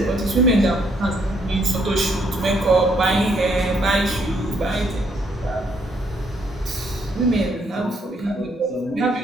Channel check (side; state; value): both; normal; correlation 0.70